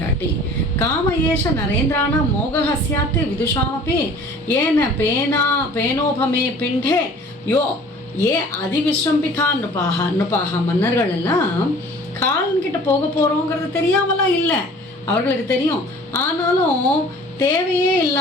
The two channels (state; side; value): normal; both; correlation 0.48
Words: காம ஏஷ நரேந்திரான மோகஹஸ்யாத்து விதுஷாமப்பி ஏன பேனோபமே பிண்டே யோ ஏ அதிவிஸ்ரம்பிகா நுபாக. மன்னர்கள் எல்லாம் காலன்கிட்ட போக போகிறோங்கிறது தெரியாமலாம் இல்லை, அவர்களுக்கு தெரியும். ஆனாலும் தேவையே